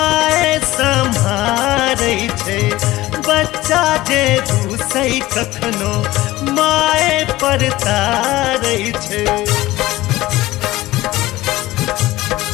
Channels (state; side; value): quieter; right; 17.5 dB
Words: सम्हारै छै बच्चा जे रूसै कखनो माय पर तारै छै